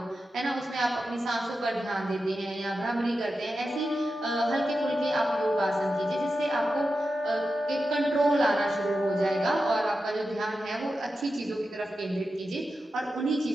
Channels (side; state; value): both; normal; correlation 0.91